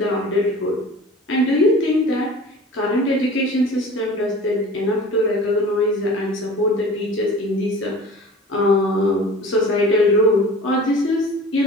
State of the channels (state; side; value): normal; both; correlation 0.41